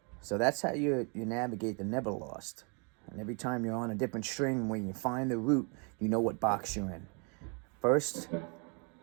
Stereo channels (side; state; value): left; quieter; 35.5 dB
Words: so that's how you navigate the Neverlost. And every time you're on a different string, when you find the root, you know what box you're in. First,